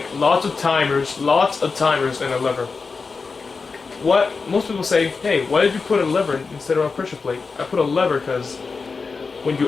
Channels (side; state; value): right; quieter; 4.6 dB